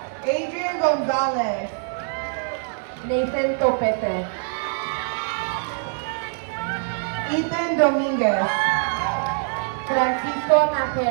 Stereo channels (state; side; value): silent; left; digital silence